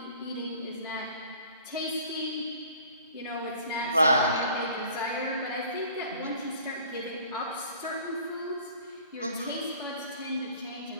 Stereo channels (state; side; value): inverted; both; correlation -0.49